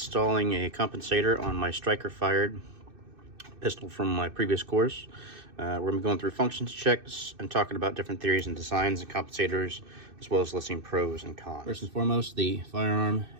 a compensator on my striker fired pistol from my previous course. We're going to be going through functions checks and talking about different theories and designs and compensators, as well as listing pros and cons. First and foremost, the firearm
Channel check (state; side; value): late; left; 2.6 ms